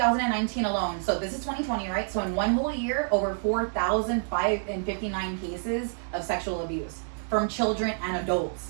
alone, so this is 2020, right? So in one whole year, over 4,559 cases of sexual abuse from children and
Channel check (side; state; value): left; silent; digital silence